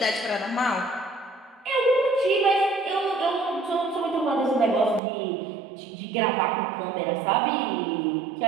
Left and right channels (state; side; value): drops out; left; at 5.0 s